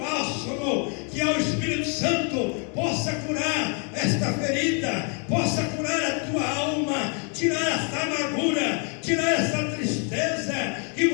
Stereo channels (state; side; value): quieter; right; 38.4 dB